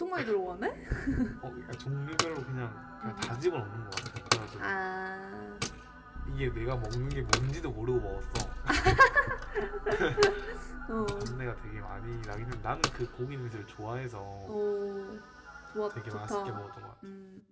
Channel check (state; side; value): identical; both; correlation 1.00